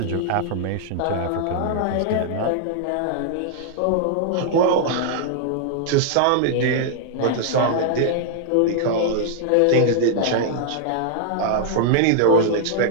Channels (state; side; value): different; both; correlation -0.01